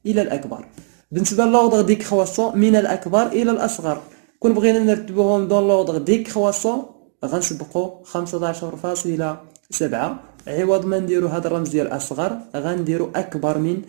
الى الاكبر. بالنسبه لوردر ديكرواسون من الاكبر الى الاصغر. كون بغينا نرتبوهم دون لوردر ديكرواسون غنسبقو 15.7. عوض ما نديرو هاد الرمز ديال أصغر غنديرو أكبر من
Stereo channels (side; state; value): left; silent; 64 dB below the other